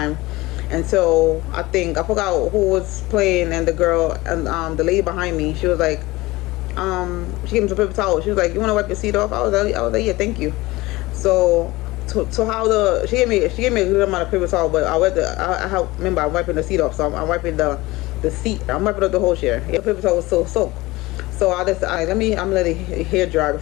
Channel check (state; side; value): quieter; right; 20.3 dB